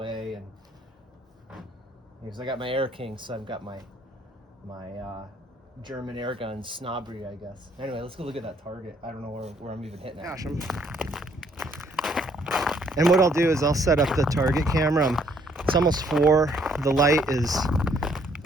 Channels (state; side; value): normal; both; correlation 0.66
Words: and because I got my Air King, so I've got my German airgun snobbery, I guess. Anyway, let's go look at that target. I don't know where I'm even hitting at. Gosh, and what I'll do is I'll set up the target camera. It's almost 4. The light is